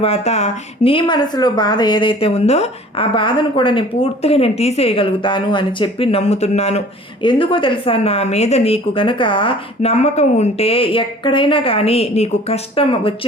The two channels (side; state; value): both; normal; correlation 0.48